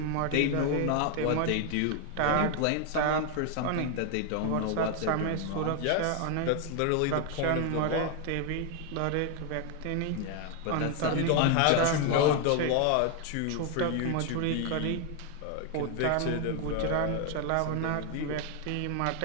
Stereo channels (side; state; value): both; different; correlation 0.01